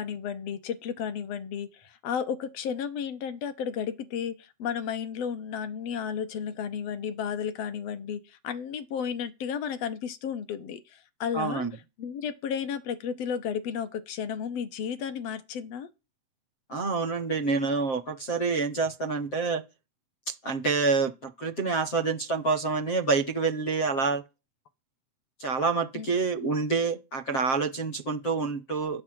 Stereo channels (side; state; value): right; late; 7.6 ms